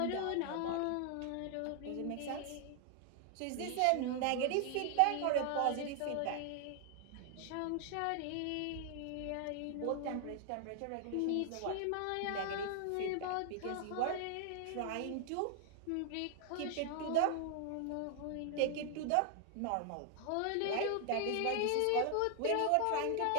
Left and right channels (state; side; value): different; both; correlation 0.00